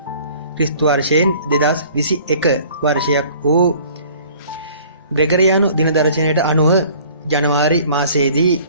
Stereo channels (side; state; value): both; inverted; correlation -0.52